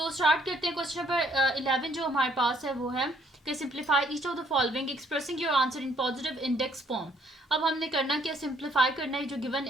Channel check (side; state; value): both; normal; correlation 0.66